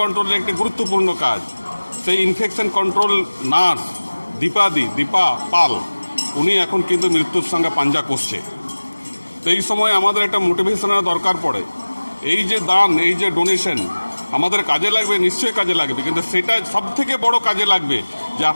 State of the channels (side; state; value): both; inverted; correlation -1.00